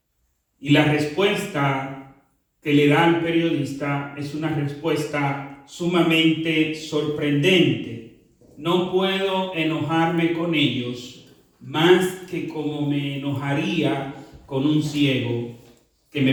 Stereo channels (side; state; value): both; identical; correlation 1.00